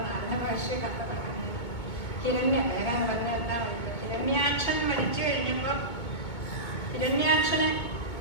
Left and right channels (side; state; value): right; late; 2.2 ms